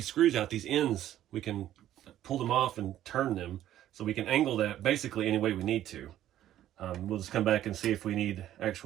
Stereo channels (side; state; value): left; quieter; 12.4 dB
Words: screws out, these ends, we can pull them off and turn them, so we can angle that basically any way we need to. We'll just come back and see if we need